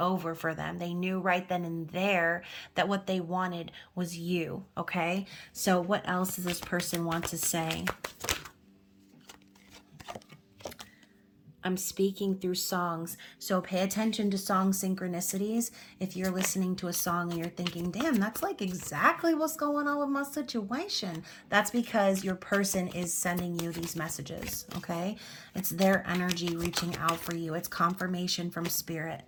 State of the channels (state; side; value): identical; both; correlation 1.00